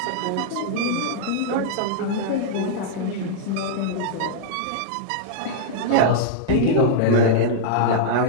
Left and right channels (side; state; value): both; different; correlation -0.02